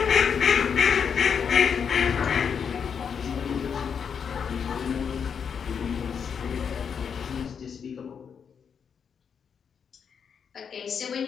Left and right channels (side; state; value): right; quieter; 6.9 dB